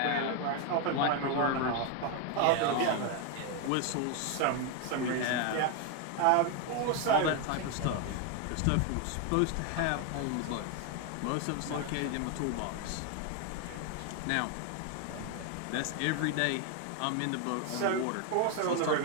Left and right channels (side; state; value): both; different; correlation 0.01